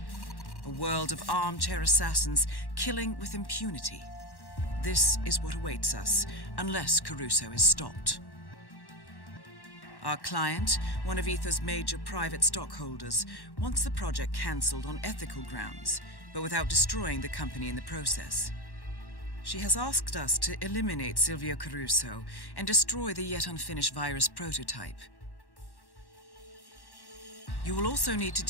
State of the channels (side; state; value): right; late; 1.1 ms